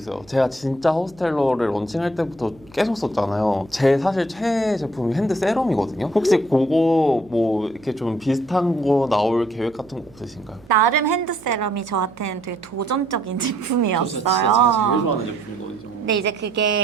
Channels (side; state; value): right; noise; hum, 26 dB below the sound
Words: 제가 진짜 호스텔러를 런칭할 때부터 계속 썼잖아요. 제 사실 최애 제품이 핸드 세럼이거든요. 혹시 그거 뭐 이렇게 좀 비슷한 거 나올 계획 같은 거 없으신가요? 나름 핸드 세럼이 저한테는 되게 도전적인 제품이었어요. 제가 제일 좋아하는 제품이거든요. 근데 이제